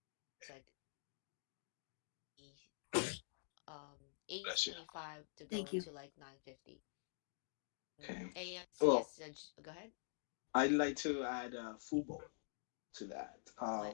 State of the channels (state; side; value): silent; right; digital silence